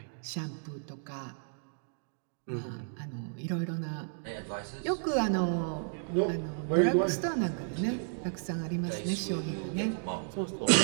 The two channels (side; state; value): left; silent; digital silence